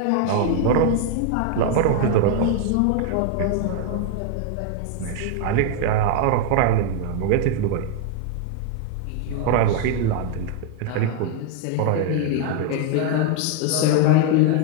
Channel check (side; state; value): both; different; correlation 0.00